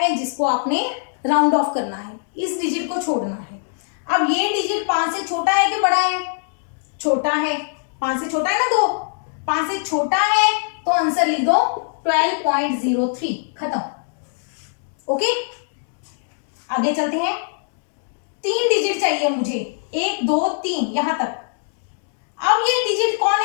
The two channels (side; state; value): right; silent; digital silence